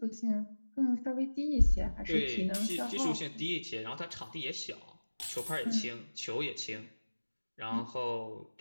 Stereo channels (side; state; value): both; inverted; correlation -1.00